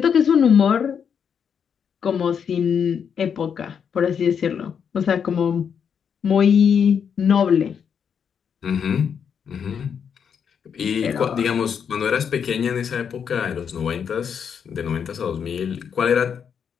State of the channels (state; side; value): quieter; right; 7.3 dB